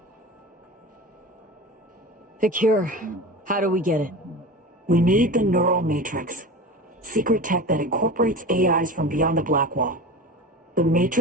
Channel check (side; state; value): both; normal; correlation 0.30